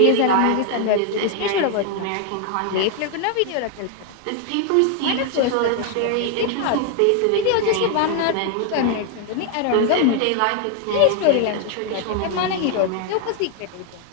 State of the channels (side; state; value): both; different; correlation 0.00